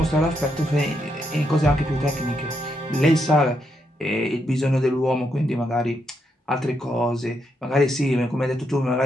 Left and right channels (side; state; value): both; normal; correlation 0.80